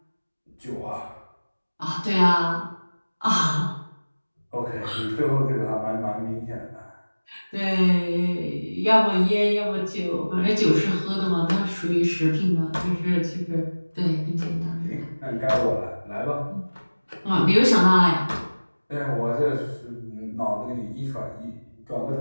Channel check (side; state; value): both; inverted; correlation -1.00